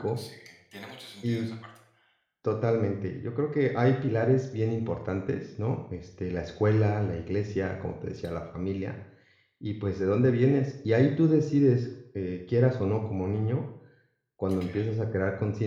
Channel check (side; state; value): both; identical; correlation 1.00